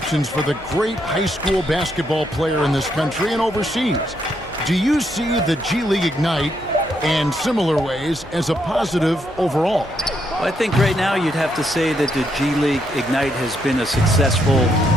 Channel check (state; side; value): normal; both; correlation 0.76